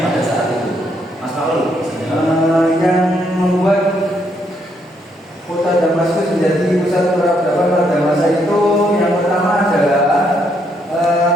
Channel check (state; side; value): normal; both; correlation 0.74